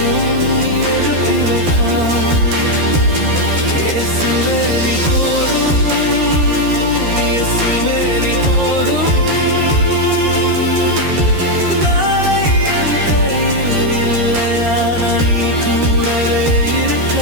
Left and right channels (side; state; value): left; late; 13 ms